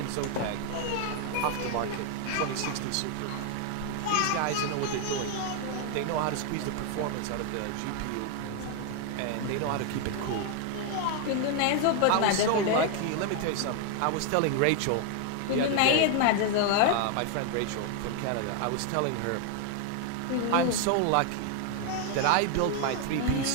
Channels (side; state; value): both; different; correlation 0.01